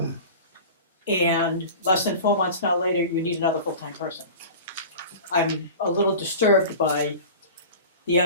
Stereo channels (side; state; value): both; inverted; correlation -0.35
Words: And less than 4 months now later, you need another full-time person. I'm a little disturbed by the